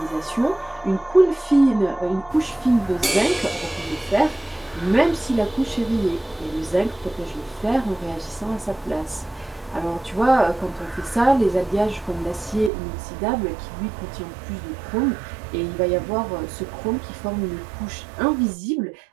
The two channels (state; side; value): drops out; left; at 12.7 s